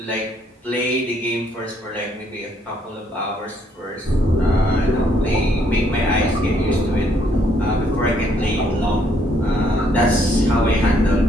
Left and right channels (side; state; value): both; normal; correlation 0.69